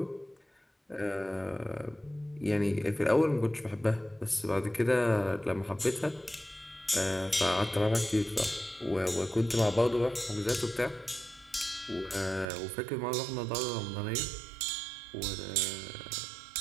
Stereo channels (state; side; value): drops out; left; at 12.5 s